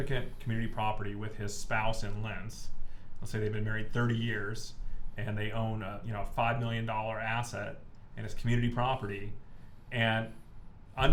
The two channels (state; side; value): identical; both; correlation 1.00